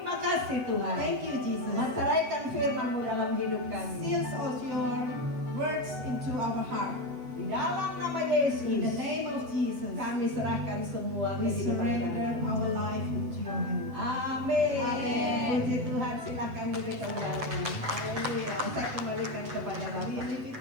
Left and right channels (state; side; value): late; left; 7.9 ms